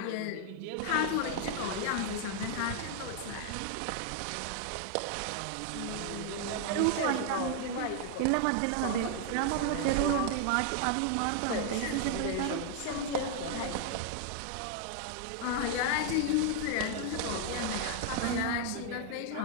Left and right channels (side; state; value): both; different; correlation 0.00